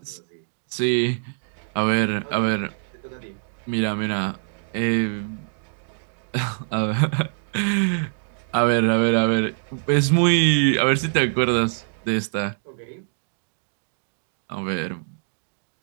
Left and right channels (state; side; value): silent; left; digital silence